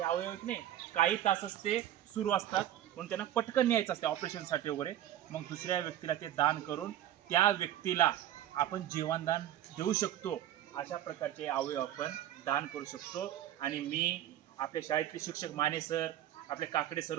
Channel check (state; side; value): quieter; left; 12.2 dB